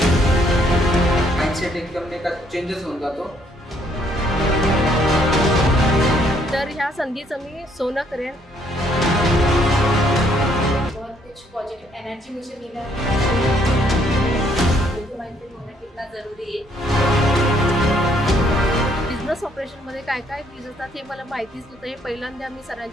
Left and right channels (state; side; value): normal; both; correlation 0.67